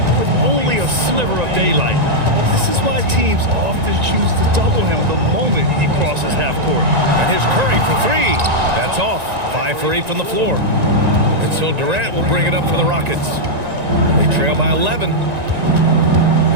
with only a sliver of daylight. This is why teams often choose to double him the moment he crosses half court. And here's Curry for three. That's off. 5 for 8 from the floor. And so Durant will bring it up for the Rockets. They trail by 11.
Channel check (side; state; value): left; late; 1.9 ms